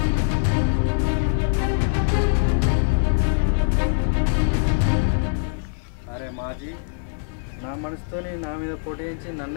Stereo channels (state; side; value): silent; right; digital silence